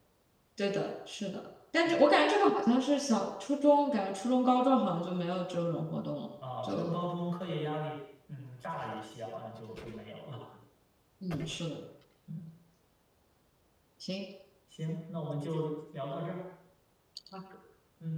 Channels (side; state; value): both; identical; correlation 1.00